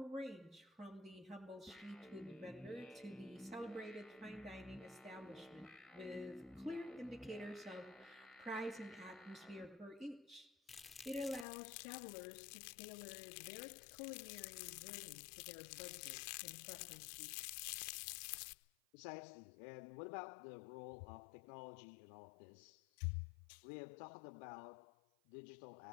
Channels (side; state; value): right; drops out; at 11.5 s